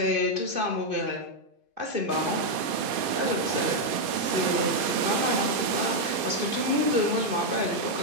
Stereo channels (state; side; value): late; left; 2.5 ms